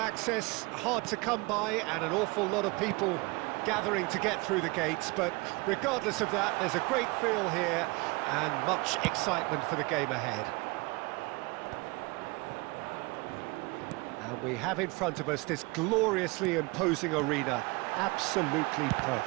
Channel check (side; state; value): left; quieter; 25.5 dB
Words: hard to come by, and an awful lot of people gathering to get through the gates, but regardless of that, there's a great feel here and much excitement for the game ahead. And we have in front of us this gloriously imposing arena, absolutely